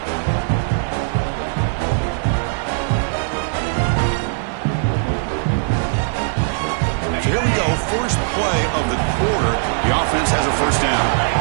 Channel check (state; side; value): silent; left; 66 dB below the other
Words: So here we go. First play of the quarter. The offense has a first down.